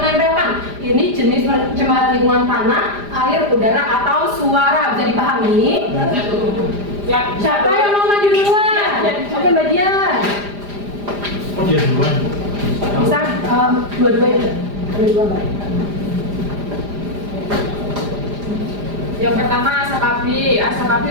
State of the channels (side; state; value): left; late; 4.9 ms